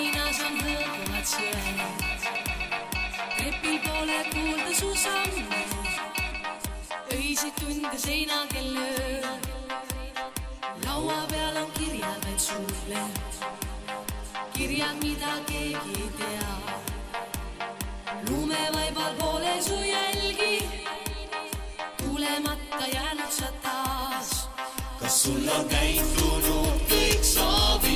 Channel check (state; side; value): identical; both; correlation 1.00